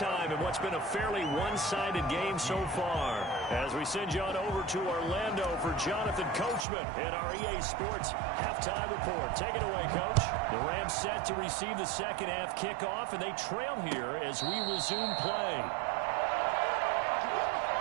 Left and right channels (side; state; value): left; drops out; at 6.7 s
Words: in what's been a fairly one-sided game so far. As we send you on over to Orlando for Jonathan Coachman in our EA Sports Halftime Report. Take it away, Coach. The Rams set to receive the 2nd half kickoff, and they trail here as we resume play.